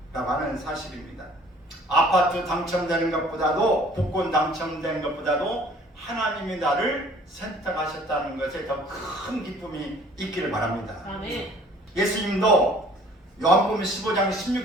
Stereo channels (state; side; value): normal; both; correlation 0.54